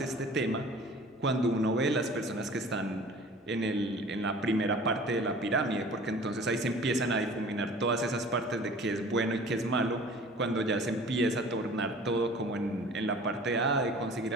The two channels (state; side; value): normal; both; correlation 0.46